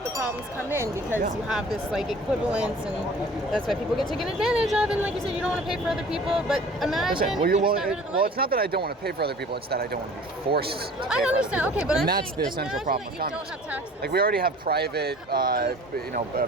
the problems come in because you have this like equivalence, and that's why people get taken advantage of. And like you said, you don't want to pay for other people, but imagine. Well, it's not that I don't want to pay for other people; it's that I don't want to be forced. I understand. Okay, but that's the essential problem with communism. Don't have taxes. Like we already have private,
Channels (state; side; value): normal; both; correlation 0.47